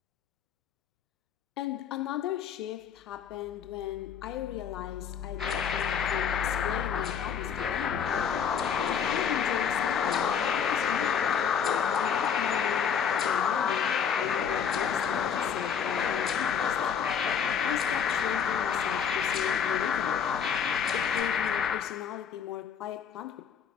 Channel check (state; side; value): quieter; right; 7.4 dB